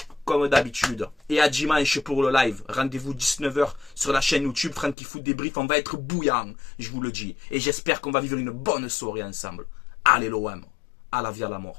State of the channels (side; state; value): right; drops out; at 5.0 s